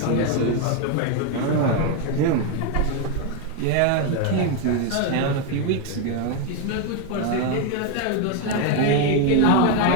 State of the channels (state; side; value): different; both; correlation 0.01